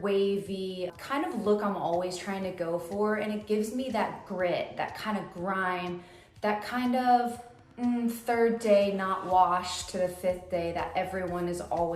wavy kind of look I'm always trying to go for, and it gives me that grit, that kind of grime, that kind of third day not washed to the fifth day that everyone is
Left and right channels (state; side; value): identical; both; correlation 1.00